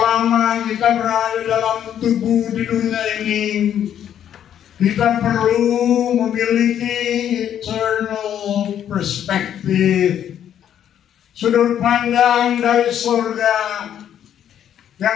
kita berada dalam tubuh di dunia ini, kita perlu memiliki eternal perspective, sudut pandang dari surga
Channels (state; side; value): quieter; right; 9.9 dB